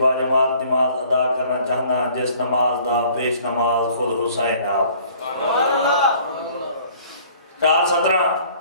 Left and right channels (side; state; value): both; inverted; correlation -0.55